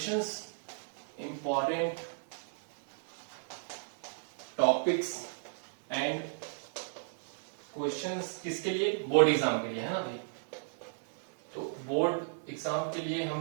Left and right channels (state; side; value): silent; left; digital silence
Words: Important topics and questions किसके लिए? बोर्ड एग्जाम के लिए, है ना ये। तो बोर्ड एग्जाम के लिए